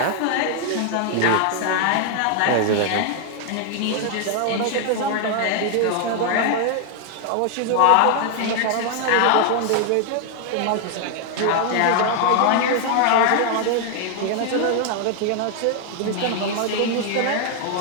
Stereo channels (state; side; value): different; both; correlation 0.00